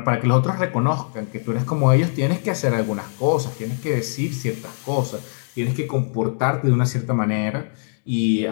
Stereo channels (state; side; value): silent; right; digital silence